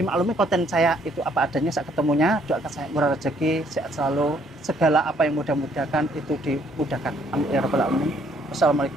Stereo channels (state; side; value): normal; both; correlation 0.65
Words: konten saya itu apa adanya saat ketemunya. Doakan saya murah rezeki, sehat selalu, segala apa yang mudah-mudahkan itu dimudahkan. Amin ya rabbal alamin.